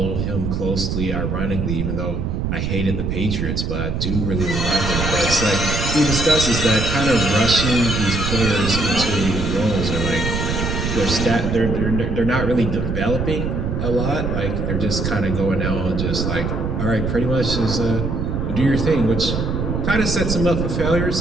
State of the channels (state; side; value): noise; right; rumble, 1 dB below the sound